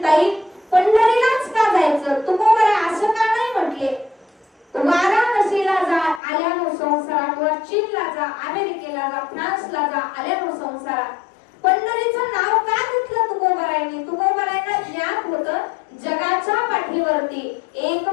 ताई पंढरीलाच का जायचं, तुकोबरा असं का नाही म्हटले. वाराणसीला जा आल्यानो संसारा, किंवा चीनला जा, अमेरिकेला जा, फ्रान्सला जा आल्यानो संसारा. पंढरीचं नाव का घेतलं तुकोबरायांनी. तुकोबरायांना ज्ञात होतं जगाच्या पाठीवरती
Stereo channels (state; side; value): drops out; right; at 6.2 s